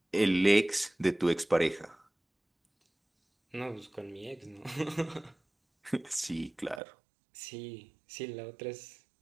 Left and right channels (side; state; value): left; drops out; at 6.8 s